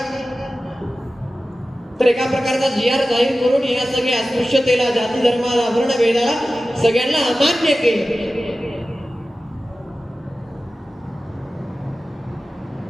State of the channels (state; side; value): normal; both; correlation 0.95